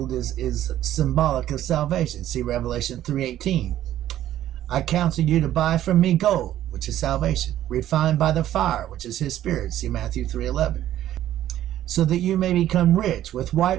is symbolic of salvation. See Revelation 3:18. I counsel you to buy from me gold, which is salvation, refined by the fire, which is his spirit. See Matthew 3:11. So that you may become rich, with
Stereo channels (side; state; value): left; quieter; 12.5 dB